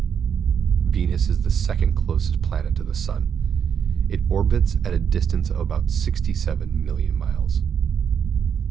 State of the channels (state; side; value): quieter; left; 7.6 dB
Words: Venus is the second closest planet to the Sun. It orbits at a distance of about 67 million miles.